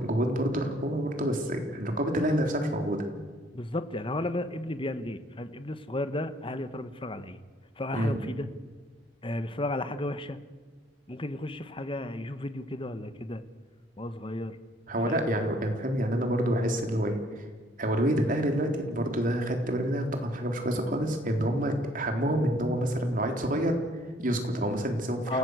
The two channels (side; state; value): both; normal; correlation 0.62